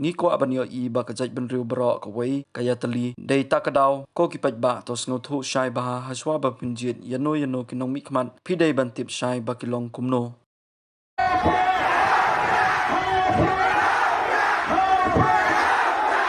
ni ko abanyo i ba ka jaj ben riu bro ka wei kaya tali dei takadaw ko ki pajba to sngo thu shai baha haswa ba pinjit yano kinong mikman pidai bantip shai bakilong kumno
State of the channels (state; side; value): identical; both; correlation 1.00